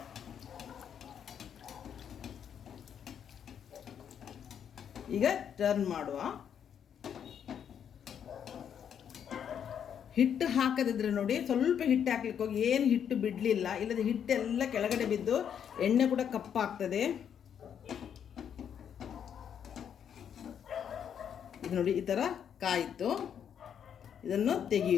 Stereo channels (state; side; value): quieter; right; 8.4 dB